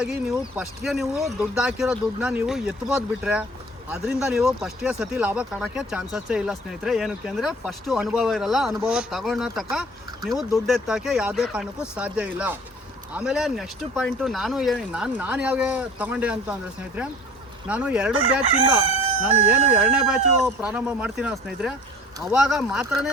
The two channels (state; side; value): normal; both; correlation 0.47